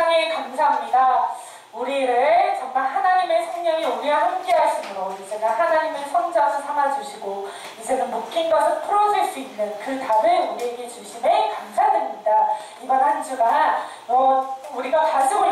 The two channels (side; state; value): both; identical; correlation 1.00